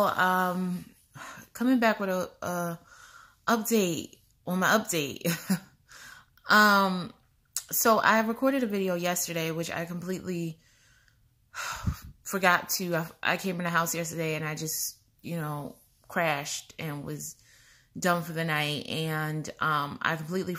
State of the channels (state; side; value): identical; both; correlation 1.00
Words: Coming back with a update on my update. um, so I recorded a video yesterday, which I completely forgot to. I came in the house yesterday and I just, crashed and was done for the night. And I completely